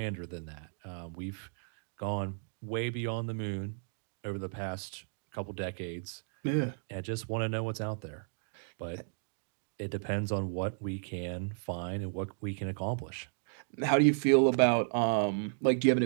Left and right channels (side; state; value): left; silent; digital silence